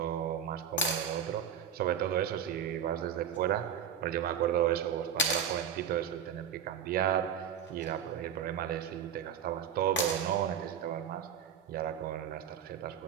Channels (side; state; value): left; quieter; 8.1 dB